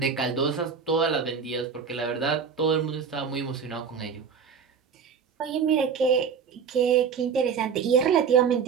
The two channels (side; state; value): left; quieter; 6.3 dB